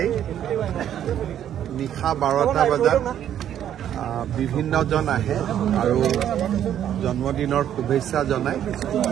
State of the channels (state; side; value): quieter; left; 10.4 dB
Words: নিশা 12টা বজাত বিভিন্নজন আহে আৰু জন্মদিনৰ শুভেচ্ছা জনায়।